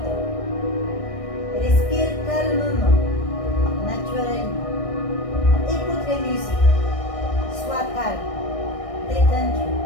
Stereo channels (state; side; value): late; right; 1.6 ms